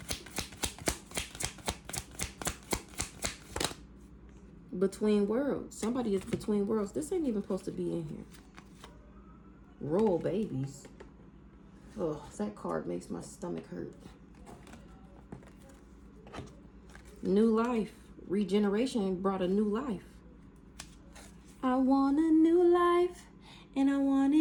Between worlds. Somebody is between worlds. This ain't even supposed to be in here. Royal babies. Oh, that card makes my stomach hurt. New life. Regeneration brought a new life. I want a new life, and I want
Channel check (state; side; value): identical; both; correlation 1.00